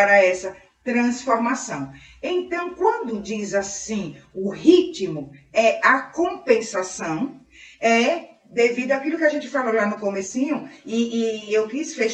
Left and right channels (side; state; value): both; identical; correlation 1.00